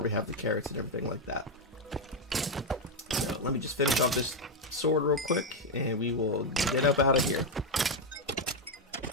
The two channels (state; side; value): normal; both; correlation 0.03